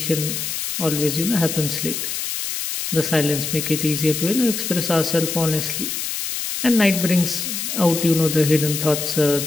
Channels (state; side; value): noise; left; hiss, 4 dB below the sound